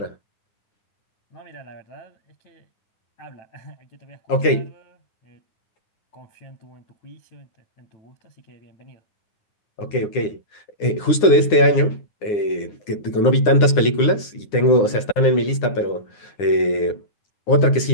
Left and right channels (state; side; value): late; right; 9.7 ms